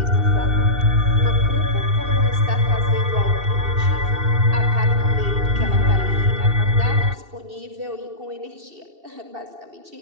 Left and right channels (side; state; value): left; late; 2.7 ms